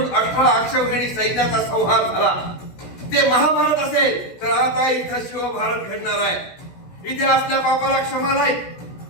18 अक्षौहिणी सैन्याचा संहार झाला. ते महाभारत असेल तर आता इथं शिवभारत घडणार आहे. इथे असल्या पापाला क्षमा नाही,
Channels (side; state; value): right; late; 16 ms